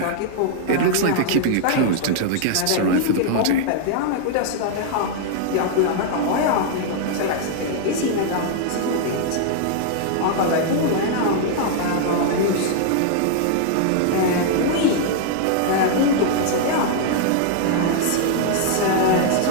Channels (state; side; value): different; both; correlation -0.01